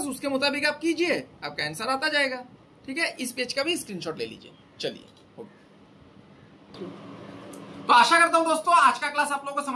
उसके मुताबिक आप कीजिए, आपका आंसर आता जाएगा, ठीक है। इस पेज का भी स्क्रीनशॉट ले लीजिए। चलिए, तो आशा करता हूं दोस्तों आज का क्लास आप लोगों को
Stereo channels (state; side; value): identical; both; correlation 1.00